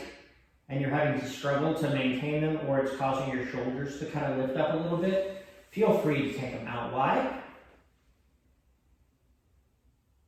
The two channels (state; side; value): identical; both; correlation 1.00